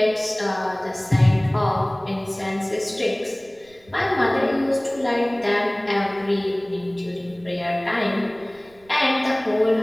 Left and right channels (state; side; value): noise; right; rumble, 29 dB below the sound